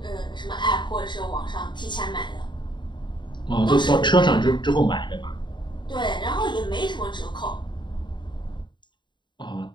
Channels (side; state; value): right; late; 0.22 ms